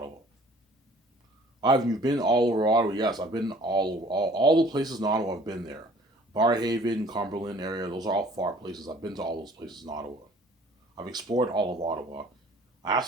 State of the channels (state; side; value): normal; both; correlation 0.53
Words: You've been all over Ottawa. Yes, I've been all the places in Ottawa. I've been there. Barrhaven, Cumberland area. Those are all far places. I've been to all those places in Ottawa. I've explored all of Ottawa. I have